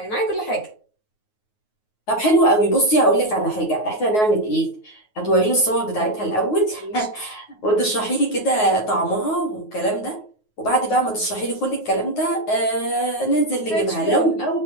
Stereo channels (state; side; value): late; right; 9.4 ms